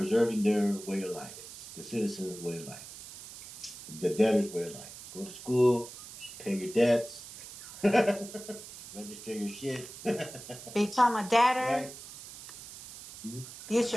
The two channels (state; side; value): noise; right; hiss, 14 dB below the sound